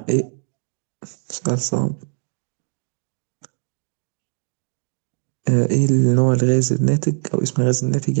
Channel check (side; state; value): left; silent; 64 dB below the other